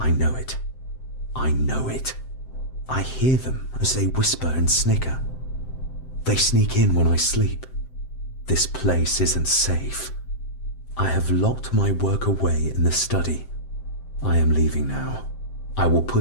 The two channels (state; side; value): late; right; 7.7 ms